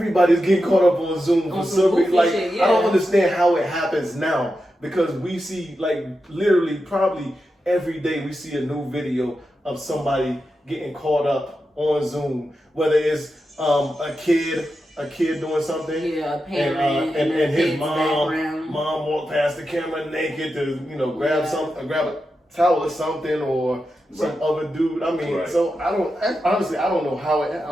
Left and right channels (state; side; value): normal; both; correlation 0.89